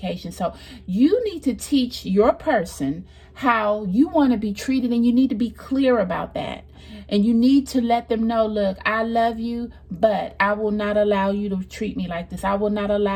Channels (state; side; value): identical; both; correlation 1.00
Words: So you need to teach your person how you want to be treated, and you need to be clear about that. And you need to let them know, look, I love you, but I will not allow you to treat me like this. I will not